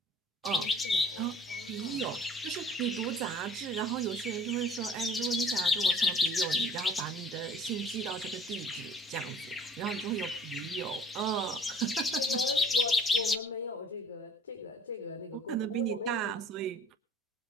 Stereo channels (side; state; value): both; normal; correlation 0.51